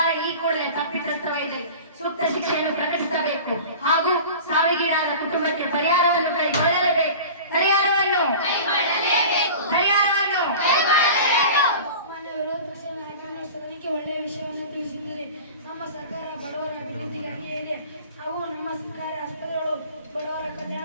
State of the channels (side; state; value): both; inverted; correlation -0.37